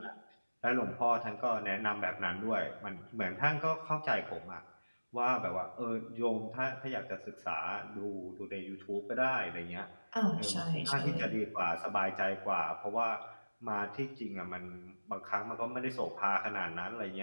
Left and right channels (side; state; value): both; inverted; correlation -1.00